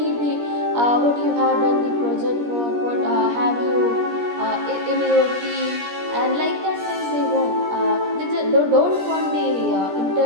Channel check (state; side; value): late; left; 17 ms